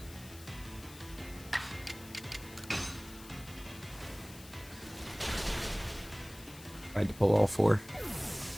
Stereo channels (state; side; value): noise; left; hiss, 17 dB below the sound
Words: Tried to pull all four.